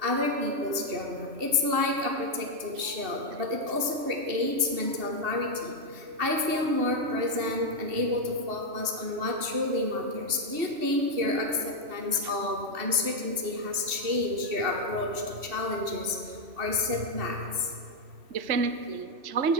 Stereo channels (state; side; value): late; left; 2.7 ms